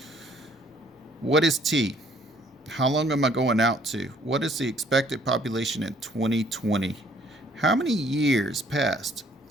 What is T? How long am I going out to? What is the expected population in 2020? How many years passed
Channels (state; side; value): normal; both; correlation 0.61